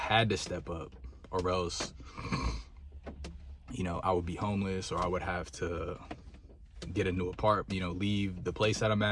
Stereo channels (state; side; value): identical; both; correlation 1.00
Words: to step up, or else, you know, I would be homeless, or I would have to get a new apartment, you know, leave the place that I'm